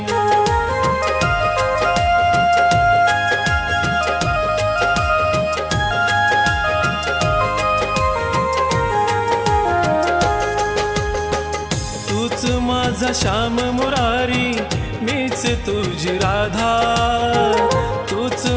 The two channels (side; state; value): both; identical; correlation 1.00